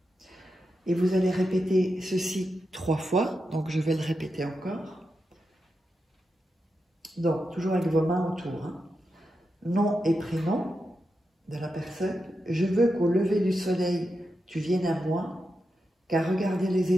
Et vous allez répéter ceci 3 fois, donc je vais le répéter encore. Donc, toujours avec vos mains autour. Hein. Nom et prénom de la personne. Je veux qu'au lever du soleil, tu viennes à moi, car regarder les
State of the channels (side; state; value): both; normal; correlation 0.88